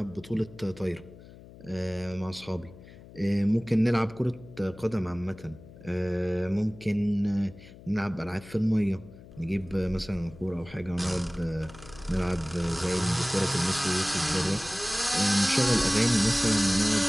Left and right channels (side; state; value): left; noise; hum, 19 dB below the sound